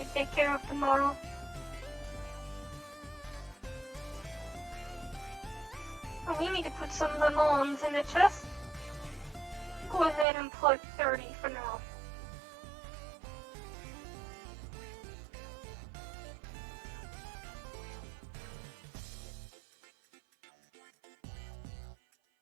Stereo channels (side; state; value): left; drops out; at 10.2 s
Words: take care of tomorrow. Oh, we need to put some lemons in the chest. Go ahead and put 30 for now.